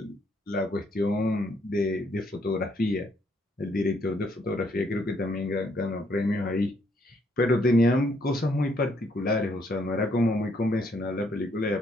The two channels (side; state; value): both; normal; correlation 0.71